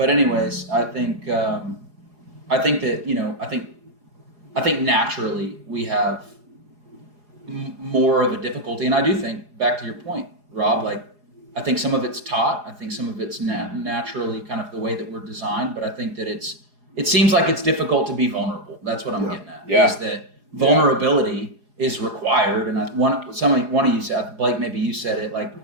anyways, I think that I think naturally we have more of a difficulty, and I do think, back to your point, Rob, like, I think some of it's taught. I think some of it's naturally kind of the way that we're designed. But I think that it seems like it's difficult to be vulnerable. That's what I'm getting at. Yeah. Is that vulnerability is required. And one of you said, Blake, maybe you said it, like,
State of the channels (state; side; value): late; left; 4.8 ms